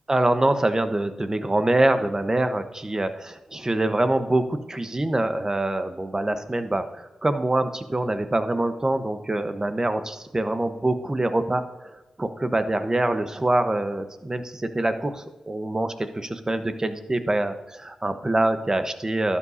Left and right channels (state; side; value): normal; both; correlation 0.97